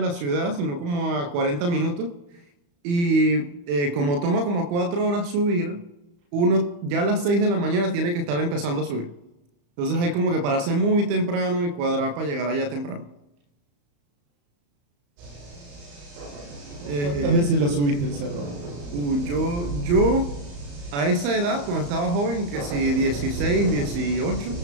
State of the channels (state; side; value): late; left; 35 ms